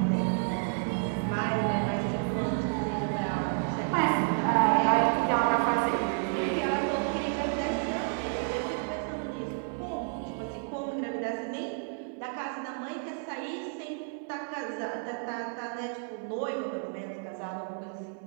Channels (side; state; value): left; silent; 57 dB below the other